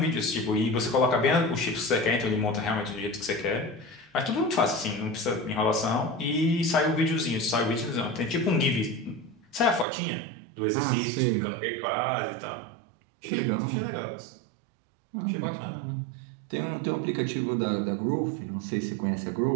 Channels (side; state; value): left; drops out; at 9.9 s